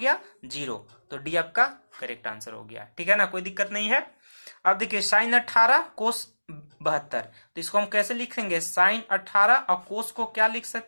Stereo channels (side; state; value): both; inverted; correlation -1.00